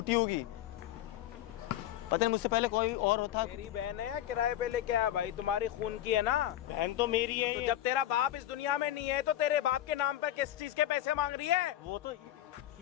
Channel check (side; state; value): right; quieter; 12.9 dB